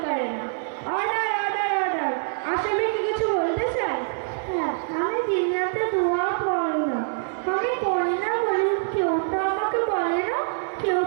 করে না। অর্ডার অর্ডার অর্ডার, আসামি কি কিছু বলতে চাই? হ্যাঁ, আমি দুনিয়াতে দোয়া পড়ি না। আমি পড়ি না বলে কেউ তো আমাকে বলে না, কেউ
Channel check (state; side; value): silent; left; 62 dB below the other